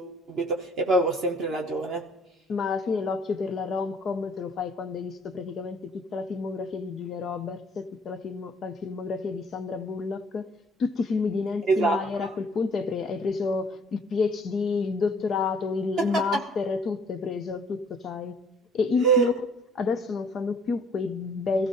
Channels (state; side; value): normal; both; correlation 0.58